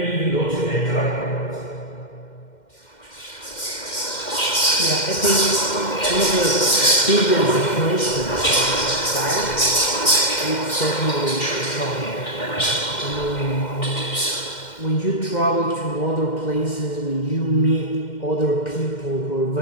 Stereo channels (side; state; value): right; late; 2.1 ms